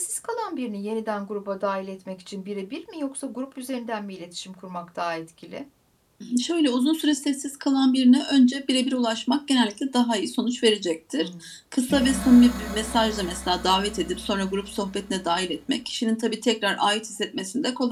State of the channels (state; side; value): identical; both; correlation 1.00